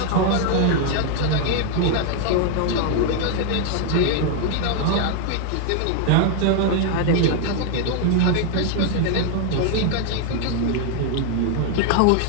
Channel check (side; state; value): both; different; correlation 0.00